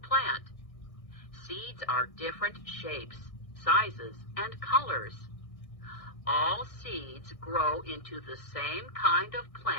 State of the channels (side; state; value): right; late; 1.6 ms